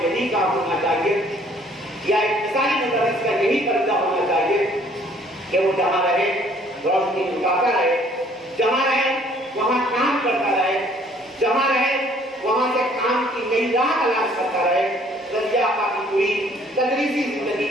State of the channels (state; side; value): normal; both; correlation 0.59